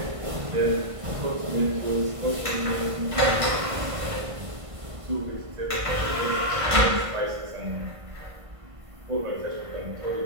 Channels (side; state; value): left; late; 1.5 ms